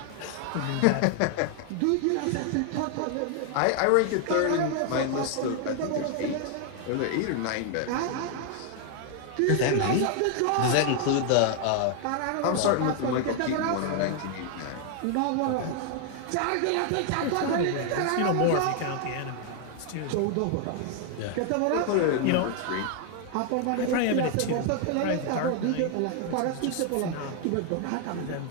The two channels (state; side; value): different; both; correlation 0.00